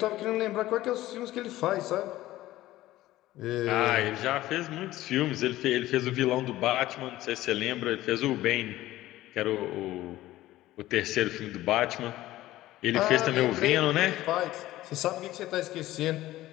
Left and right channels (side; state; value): right; quieter; 15.8 dB